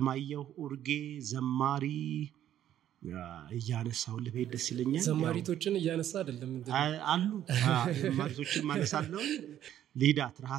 ኡርጌ፣ ዘማሪ እያነሳሁልህ በሄድ ደስ ይለኛል። ዘማሪቶችን እያነሳ አይደለም አሉ ዘማሪቶችን ማነሳለው። ሊዳ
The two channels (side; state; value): left; quieter; 11.3 dB